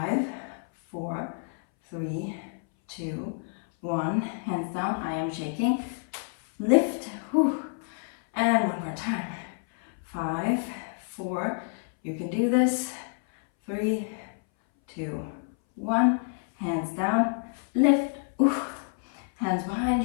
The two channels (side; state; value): right; silent; 59 dB below the other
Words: 4, 3, 2, 1. Hands down, I am shaking. Lift. Whew. And one more time. 5, 4, you can do this. 3, 2, 1. Hands down, lift, oof. Hands behind